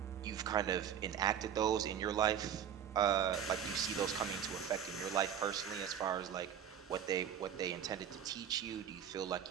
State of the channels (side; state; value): left; quieter; 8.9 dB